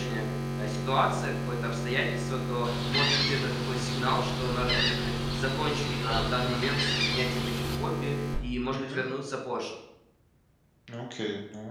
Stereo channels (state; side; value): identical; both; correlation 1.00